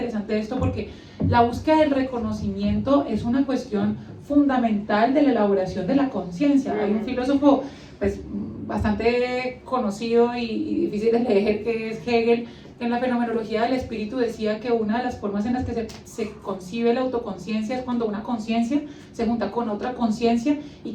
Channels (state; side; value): identical; both; correlation 1.00